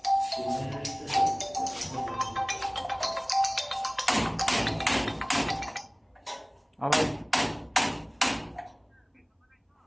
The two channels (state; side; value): identical; both; correlation 1.00